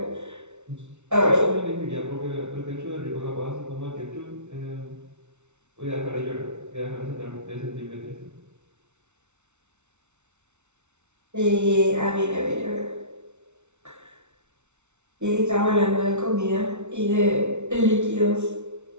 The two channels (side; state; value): left; late; 0.82 ms